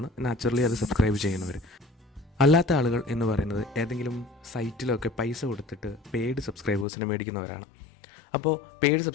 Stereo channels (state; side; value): drops out; right; at 6.9 s